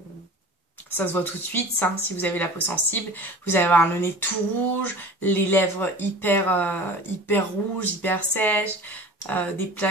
ça se voit tout de suite, ça, si vous avez la peau sensible. Vous allez avoir le nez tout rouge, les lèvres hyper rouges, hyper sèches, des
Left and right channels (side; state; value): both; normal; correlation 0.39